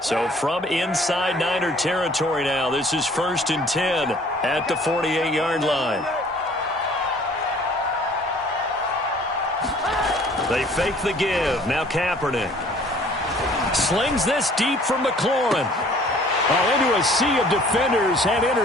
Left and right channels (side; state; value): both; normal; correlation 0.54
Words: from inside Niner territory now, this is 1st and 10 at the 48-yard line. They fake the give. Now Kaepernick slings this deep from McLaurin. Into a sea of defenders and